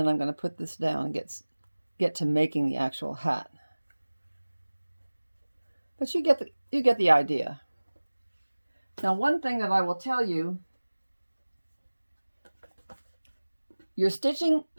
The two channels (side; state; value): both; inverted; correlation -1.00